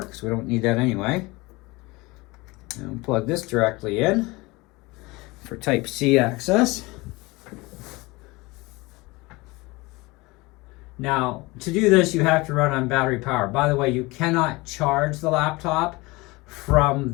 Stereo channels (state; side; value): quieter; right; 23.1 dB